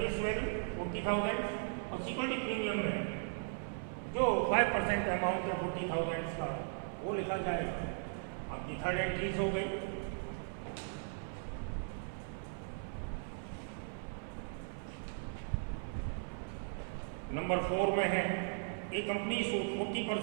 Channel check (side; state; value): left; silent; 53 dB below the other